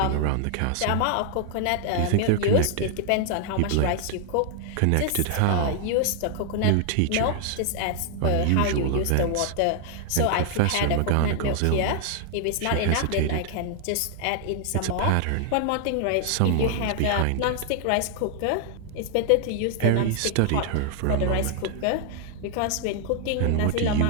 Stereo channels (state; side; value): different; both; correlation 0.00